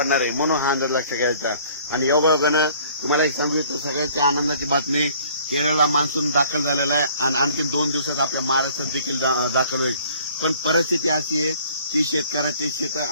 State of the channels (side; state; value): both; inverted; correlation -0.55